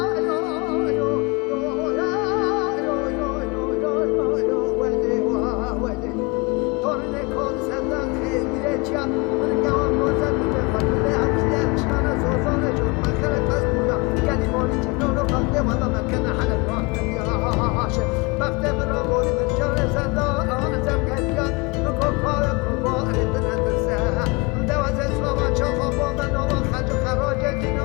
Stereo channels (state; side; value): quieter; right; 28.1 dB